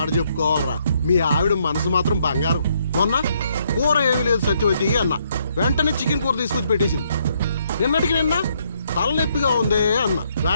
చెప్పుకోవాలరా, మీ ఆవిడ మనసు మాత్రం బంగారం. మొన్న కూర ఏమీ లేదు సత్యవతి అన్న, వెంటనే చికెన్ కూర తీసుకొచ్చి పెట్టేసింది. నిన్నటికి నిన్న తలనొప్పిగా ఉంది అన్న,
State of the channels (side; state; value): both; inverted; correlation -0.72